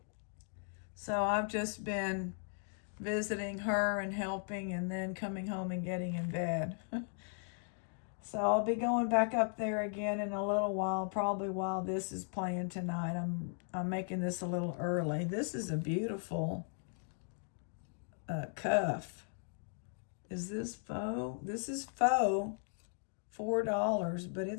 So I've just been visiting her and helping and then coming home and getting in bed. So I'll be going back up there again in a little while, probably while this is playing tonight. I'm making this a little early. This is a beautiful cuff. Is this faux? This is faux. $4, but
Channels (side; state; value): right; silent; 53 dB below the other